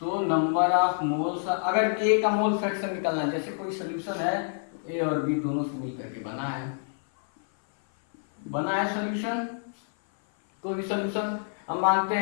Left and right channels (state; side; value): silent; right; 57 dB below the other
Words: नंबर ऑफ मोल्स, अगर A का मोल फ्रैक्शन निकालना है, जैसे कोई सोल्यूशन है A और B दोनों से मिलकर के बना है सोल्यूशन, कोई भी सोल्यूशन, हम मानते